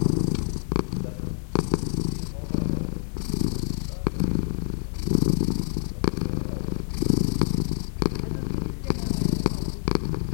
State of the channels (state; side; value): silent; right; digital silence